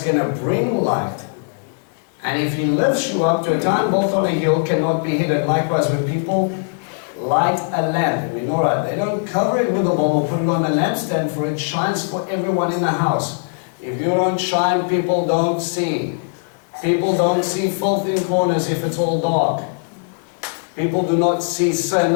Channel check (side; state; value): right; silent; digital silence